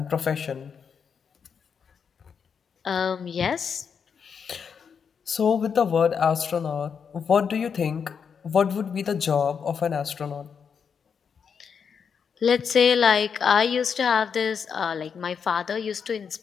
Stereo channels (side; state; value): right; quieter; 6.6 dB